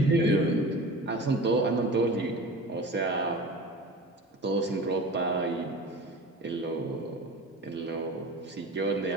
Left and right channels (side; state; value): both; normal; correlation 0.36